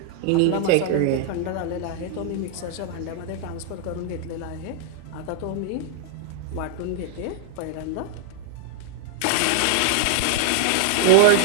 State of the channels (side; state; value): both; different; correlation -0.01